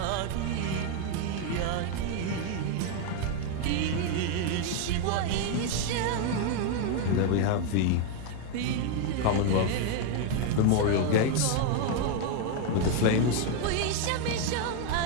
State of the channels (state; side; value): different; both; correlation 0.01